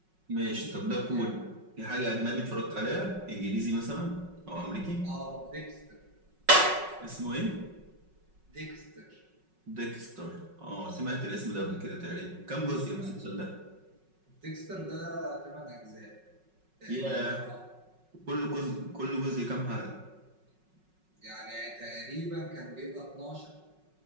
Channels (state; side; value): late; left; 5.4 ms